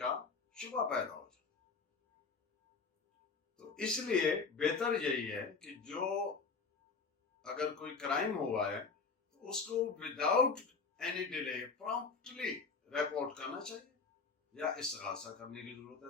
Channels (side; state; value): right; quieter; 4.8 dB